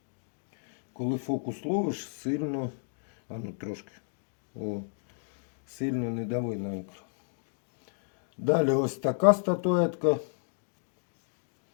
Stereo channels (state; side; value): silent; right; 56 dB below the other